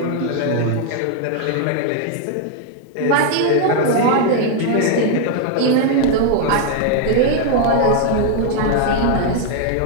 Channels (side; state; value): both; different; correlation 0.00